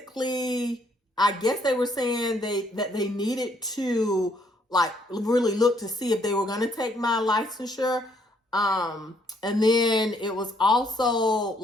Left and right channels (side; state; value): both; normal; correlation 0.68